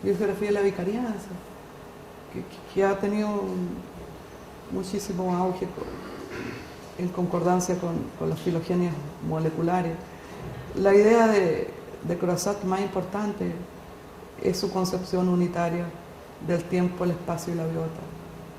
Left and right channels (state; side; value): identical; both; correlation 1.00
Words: biogeografía de la vicarianza, que ha tenido muchísimo auge en concordancia con las filogenias moleculares. La idea de Croizat más importante es su concepción unitaria del tiempo, el espacio y la biota.